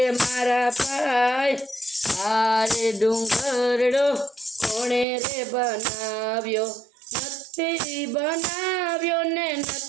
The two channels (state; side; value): drops out; left; at 5.1 s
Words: મારા ભાઈ, આરે ડુંગરડો કોણે રે બનાવ્યો। નથી બનાવ્યો ને